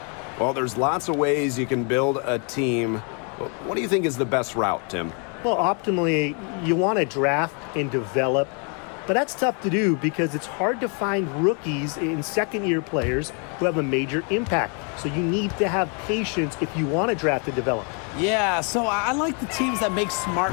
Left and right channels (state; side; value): quieter; right; 37.7 dB